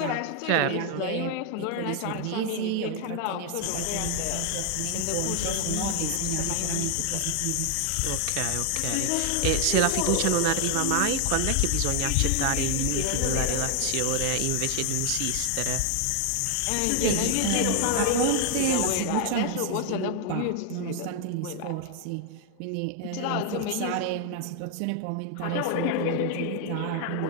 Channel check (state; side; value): different; both; correlation 0.00